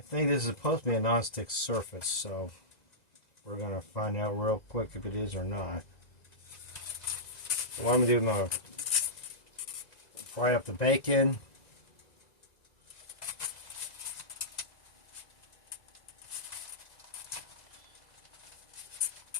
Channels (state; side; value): late; right; 2.0 ms